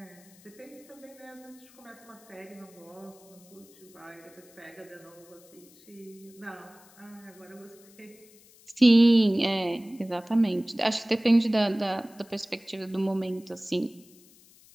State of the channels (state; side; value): noise; left; hiss, 26 dB below the sound